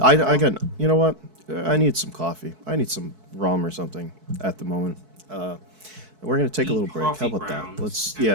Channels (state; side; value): late; left; 4.6 ms